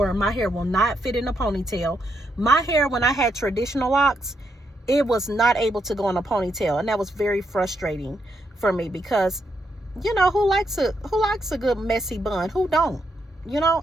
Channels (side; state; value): both; normal; correlation 0.79